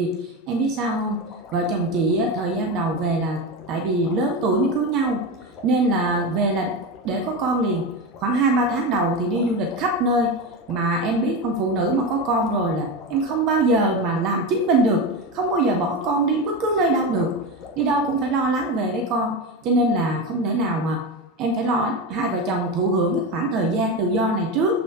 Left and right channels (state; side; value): normal; both; correlation 0.19